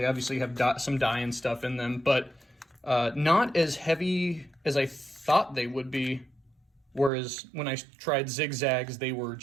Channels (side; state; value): left; drops out; at 7.1 s